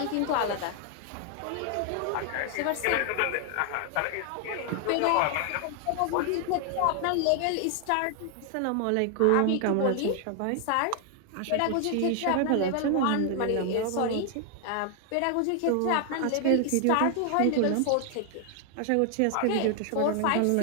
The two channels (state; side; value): different; both; correlation 0.00